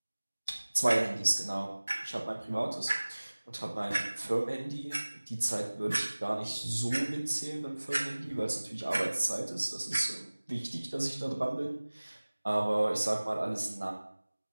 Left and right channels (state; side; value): inverted; both; correlation -1.00